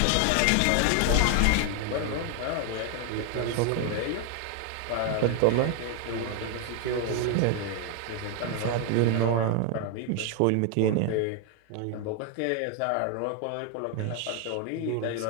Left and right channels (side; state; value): both; different; correlation 0.01